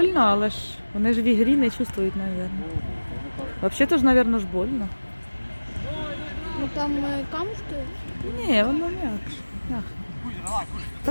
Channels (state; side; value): inverted; both; correlation -1.00